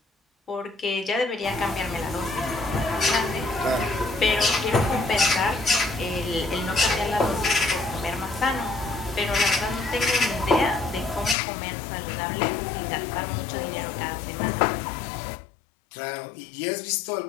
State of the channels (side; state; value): right; drops out; at 11.4 s